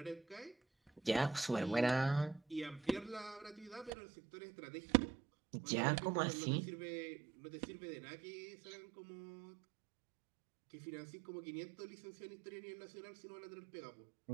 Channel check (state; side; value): drops out; left; at 3.9 s